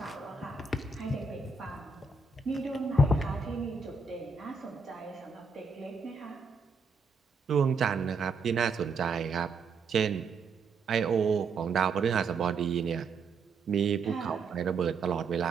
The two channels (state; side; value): quieter; left; 4.3 dB